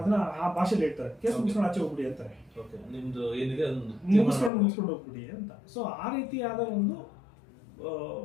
ಆ ಭಾಷೆಯಲ್ಲಿ ಹೇಳ್ತಾರೆ, ಕೇಸ್ ಮುಗಿಸ್ಕೊಂಡು ಆಚೆ ಹೋಗ್ಬಿಡಿ ಅಂತಾರೆ, ಮುಗಿಸ್ಕೊಂಡು ಹೋಗ್ಬಿಡಿ ಅಂತ. ಸೊ ಆ ರೀತಿಯಾದ ಒಂದು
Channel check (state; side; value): drops out; right; at 4.5 s